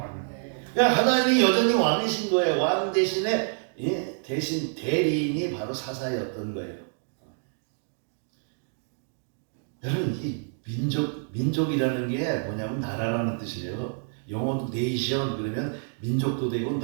그러니까 하나님이 여전히 왕이신 거예요. 왕 대신에 대신 대리인이 바로 사사였던 거예요. 여러분 이 민족이라는 게 뭐냐면 나라라는 뜻이에요. 영어도 네이션 그러면 민족도 되고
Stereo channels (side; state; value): left; silent; 60 dB below the other